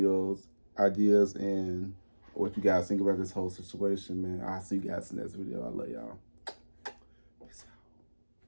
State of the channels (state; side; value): inverted; both; correlation -1.00